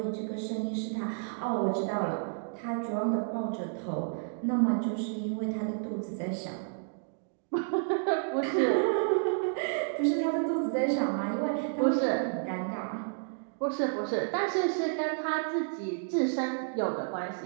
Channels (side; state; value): left; silent; digital silence